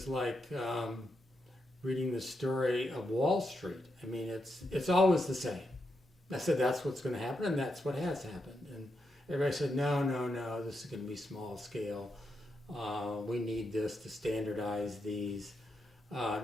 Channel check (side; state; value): both; normal; correlation 0.84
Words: like reading the story of Wall Street. I mean, it's always the same. I said, that's what's going to happen, and that's what has happened. And everybody said, no, this is going to be small scale. We need this to standardize these. I